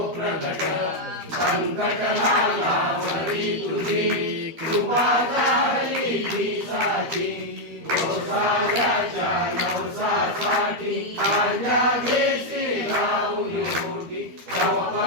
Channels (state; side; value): late; left; 12 ms